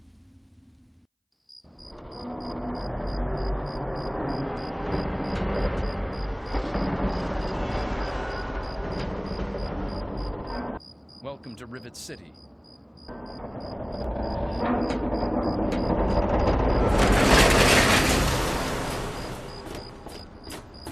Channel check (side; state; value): both; identical; correlation 1.00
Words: Welcome to Rivet City.